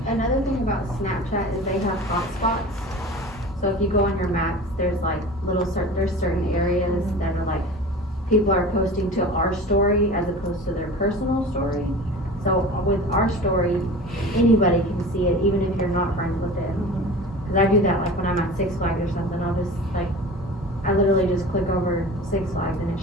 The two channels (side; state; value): both; normal; correlation 0.37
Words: Another thing about Snapchat is they have hotspots. So if you go on your maps, there's like there's certain areas that are like, people are posting to our story as opposed to their personal story. So with our story, anybody can see it, even if you're not friends with it. Cause I do that like when I'm at Six Flags or something, I'll just like, I literally just click over Six Flags and it